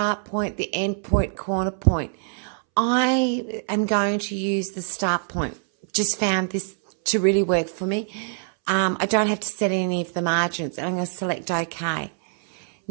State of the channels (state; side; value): silent; left; 63 dB below the other